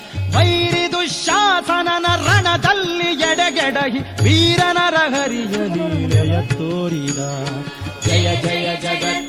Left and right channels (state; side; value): identical; both; correlation 1.00